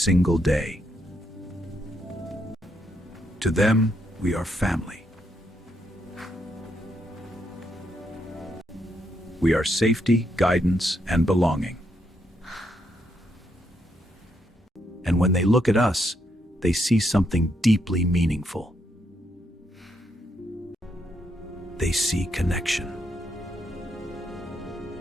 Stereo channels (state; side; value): normal; both; correlation 0.77